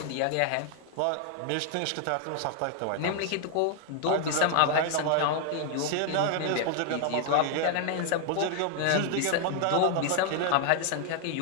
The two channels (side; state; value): both; different; correlation 0.00